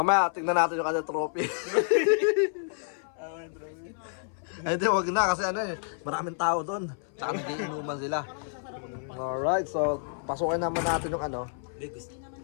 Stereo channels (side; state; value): right; silent; 58 dB below the other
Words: tingnan natin yung kanyang trophy. Ay, di, wag na kasi maraming tao doon. Tsaka nagiinuman sila. Alright, so pasukin naman natin yung